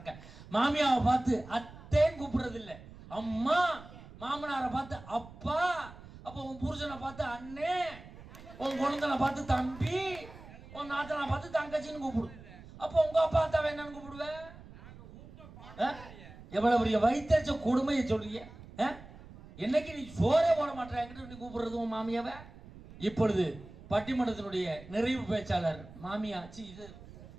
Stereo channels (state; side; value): noise; right; rumble, 18 dB below the sound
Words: மாமியாவை பார்த்து அத்தேன்னு கூப்பிடுறது இல்ல, அம்மா. மாமனாரை பார்த்து அப்பா. அப்போ உன் புருஷனை பார்த்து அண்ணே, உன் குழந்தைனை பார்த்து தம்பி, உன் நாத்தனை பார்த்து தங்கச்சின்னு கூப்பிடு. அப்போ உங்க அப்பா அத்தாவை என்னன்னு கூப்பிடுவேன்? எவ்வளவு பெரிய வயிற்றுச்ச கொடுமையை சொல்றீங்க. என்னைக்கு நீ சோறே போட மாட்டேன் என்கிட்ட நீ கூப்பிடுறது உன் மாமியாவை. இப்பொழுது பட்டிமன்றத்தினுடைய நிறைவு பேச்சாளர் மாமியா இது